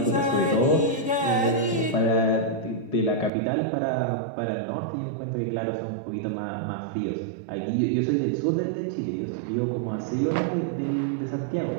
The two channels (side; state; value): left; drops out; at 3.3 s